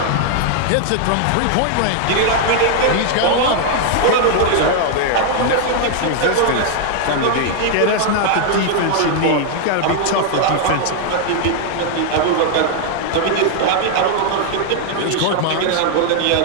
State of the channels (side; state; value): both; different; correlation 0.00